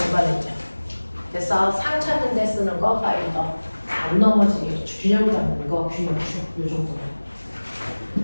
렌즈. 됐어. 상 찾는 데 쓰는 거 파인더. 안 넘어지게 균형 잡는 거 균형추. 요 정도.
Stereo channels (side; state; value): both; inverted; correlation -1.00